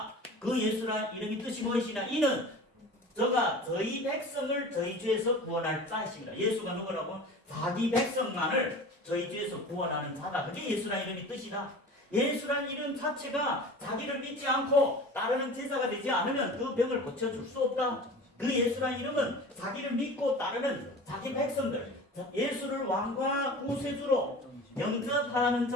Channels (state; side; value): normal; both; correlation 0.38